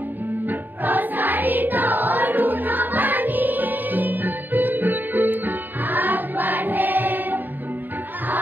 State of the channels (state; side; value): late; left; 0.090 ms